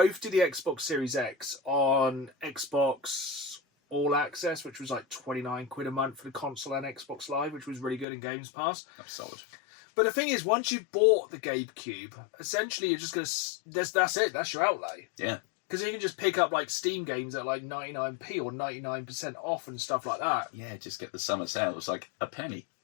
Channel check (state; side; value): drops out; right; at 8.1 s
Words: did the Xbox Series X on Xbox All Access, which was like 29 quid a month for the console and Xbox Live, which was really good in Games Pass. That's solid. But the thing is, once you bought the GameCube, essentially you're just going to... That's it. That's your outlay. Yeah. Because you can just pick up like Steam games at like 99p or 99% off and stuff like that. Yeah, just get the summer sale. It's like a penny.